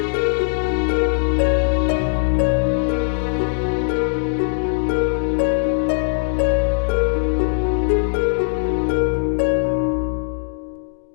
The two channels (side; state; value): right; silent; 65 dB below the other